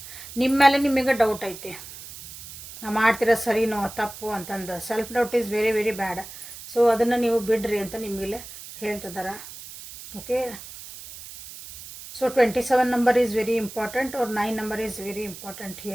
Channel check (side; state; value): right; noise; hiss, 14 dB below the sound